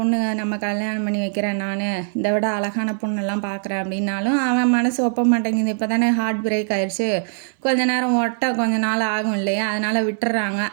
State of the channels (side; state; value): left; silent; digital silence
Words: நம்ம கல்யாணம் பண்ணி வைக்கிறேன், நான் இதை விட அழகான பொண்ணெல்லாம் பார்க்குறேன் அப்படின்னாலும் அவன் மனசு ஒப்ப மாட்டேங்குது. இப்போ தானே ஹார்ட் பிரேக் ஆயிடுச்சு, கொஞ்ச நேரம் கொஞ்ச நாள் ஆகும் இல்லையா, அதனால் விட்டுறாங்க.